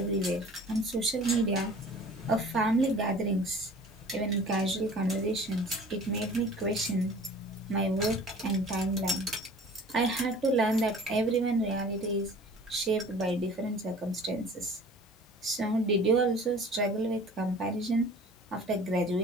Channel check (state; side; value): normal; both; correlation 0.46